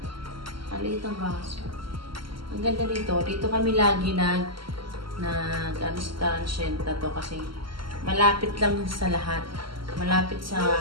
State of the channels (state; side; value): late; left; 0.74 ms